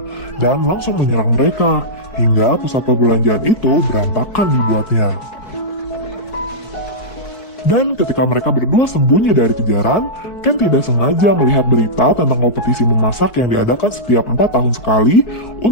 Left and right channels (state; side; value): late; right; 4.6 ms